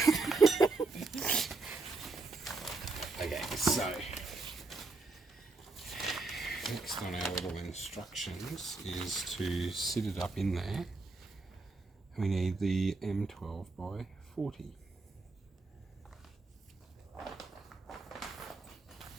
Okay, so next on our little instructions is to sit it up in there. We need the M12 by 40.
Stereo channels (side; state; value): left; quieter; 3.7 dB